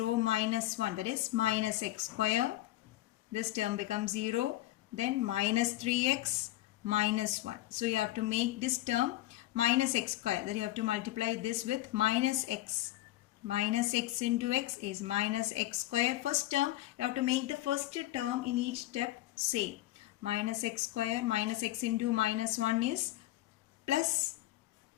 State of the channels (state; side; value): quieter; right; 16.0 dB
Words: minus 1, that is minus x square. This term becomes 0. Then minus 3x minus 1. So you have to make this term minus x square. Then you have to multiply this with minus x. Minus x into x is minus x square. First term, you have to make the first term in each step same. Minus x square minus x into minus 1 is plus